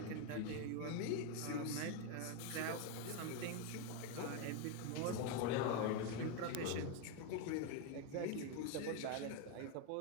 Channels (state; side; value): different; both; correlation 0.02